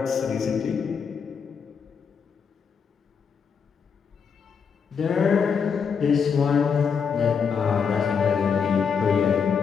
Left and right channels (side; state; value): right; quieter; 6.3 dB